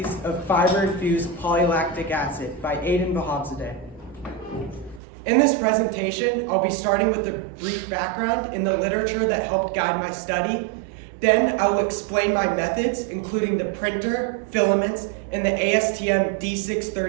of fiber-infused polylactic acid by Aiden Vahabzadeh. In this presentation, I'll be starting with a brief background in the literature that helped guide my study. Then I will explain my methods, including the printer, filaments, and the ASTM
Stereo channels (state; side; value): drops out; left; at 5.0 s